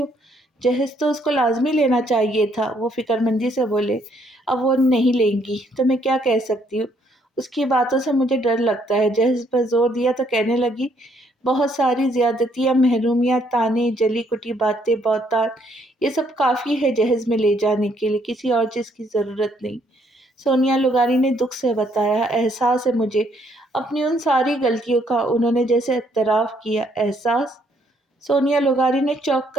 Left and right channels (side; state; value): both; normal; correlation 0.69